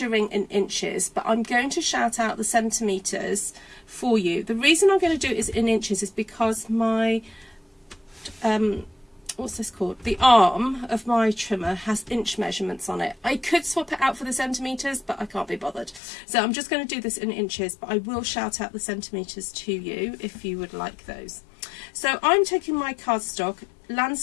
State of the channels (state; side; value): drops out; right; at 16.0 s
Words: in inches, but I'm going to shout out the centimetres for you. The reason I'm going to do it is in inches is because my, what's this called? The arm of my trimmer has inch measurements on it. I could swap it out for the centimetres, but I can't be bothered. So I'm just going to do this in inches, but I will shout out the centimetres to you if you would like those. So I'm taking my cardstock,